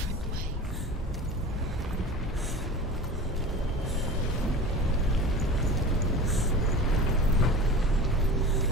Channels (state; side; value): normal; both; correlation 0.35